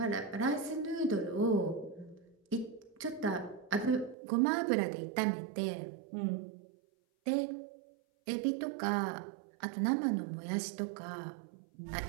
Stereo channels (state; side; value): drops out; left; at 4.2 s